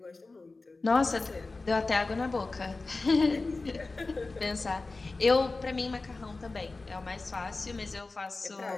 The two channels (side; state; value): right; quieter; 3.5 dB